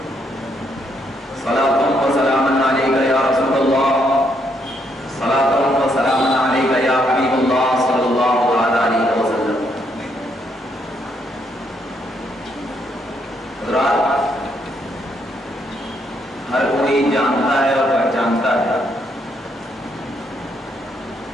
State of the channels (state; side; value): normal; both; correlation 0.74